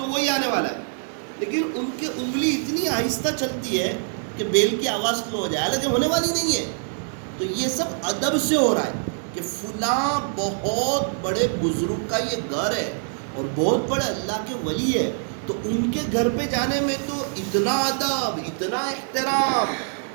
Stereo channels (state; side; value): silent; left; digital silence